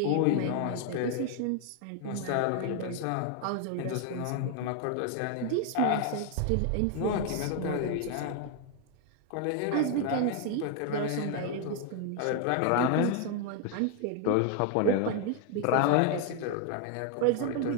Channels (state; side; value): different; both; correlation 0.00